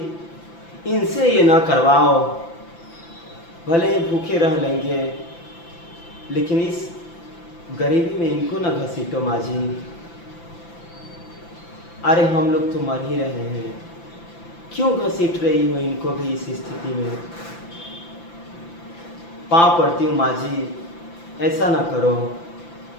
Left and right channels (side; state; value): right; late; 5.9 ms